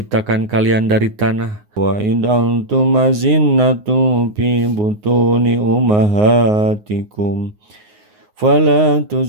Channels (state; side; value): late; left; 9.6 ms